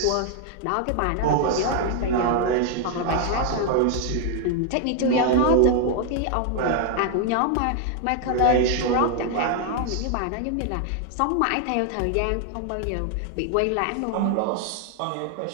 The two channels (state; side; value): different; both; correlation 0.00